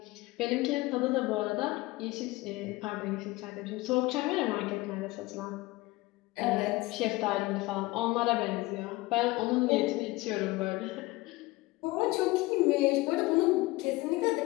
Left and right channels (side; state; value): right; quieter; 20.7 dB